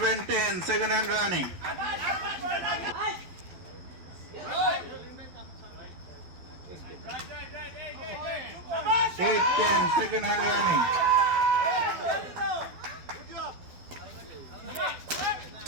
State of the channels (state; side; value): late; left; 12 ms